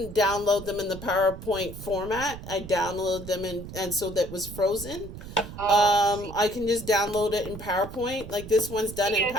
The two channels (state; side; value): noise; right; rumble, 12 dB below the sound